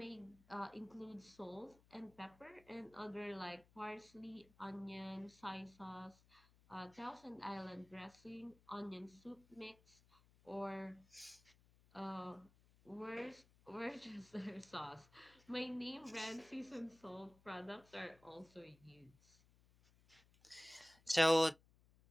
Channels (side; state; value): left; noise; hum, 28 dB below the sound